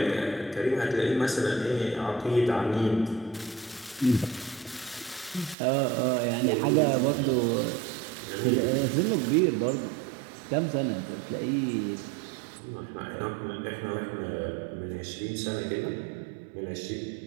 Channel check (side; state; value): left; drops out; at 5.6 s